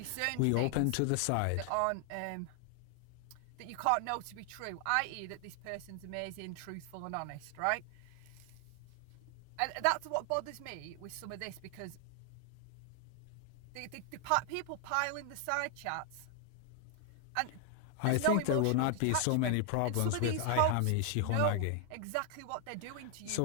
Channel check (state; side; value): different; both; correlation 0.00